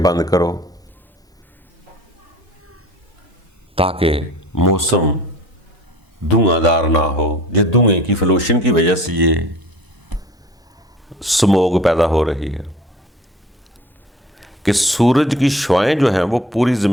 کرو، تاکہ موسم دھواں دار نہ ہو۔ یہ دھوئیں کی فلوشن کی وجہ سے یہ سموگ پیدا ہو رہی ہے کہ سورج کی شعاعیں جو ہیں وہ پوری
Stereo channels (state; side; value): normal; both; correlation 0.45